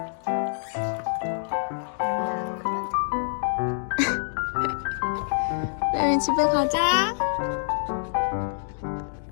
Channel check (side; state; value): right; silent; digital silence